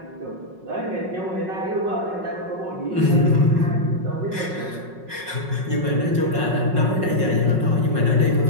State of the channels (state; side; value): late; left; 5.4 ms